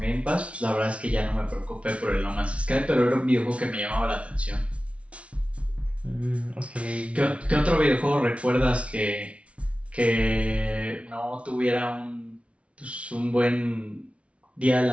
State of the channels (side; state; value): left; late; 0.062 ms